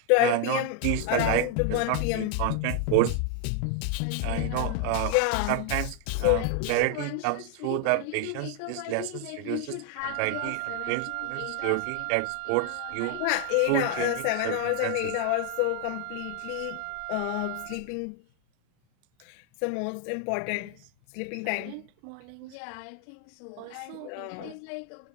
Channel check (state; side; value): different; both; correlation 0.00